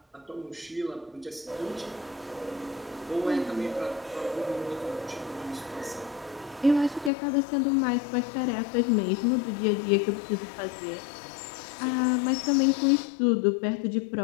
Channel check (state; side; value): drops out; right; at 7.1 s